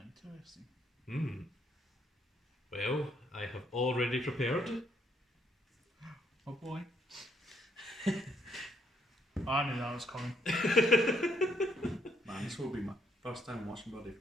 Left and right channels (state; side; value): normal; both; correlation 0.70